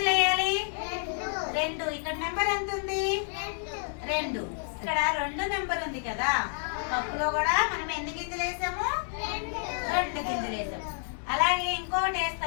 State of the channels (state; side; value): silent; right; 58 dB below the other